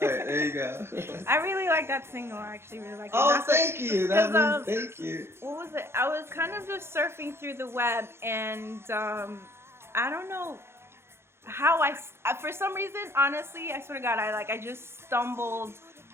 there you go. I really like that single. I actually really like it. Oh, thank you. Thank you. What was it? I was kind of just surfing through the web, and I don't know how for some reason, honestly, I swear to God, I just stumbled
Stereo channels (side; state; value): left; late; 0.12 ms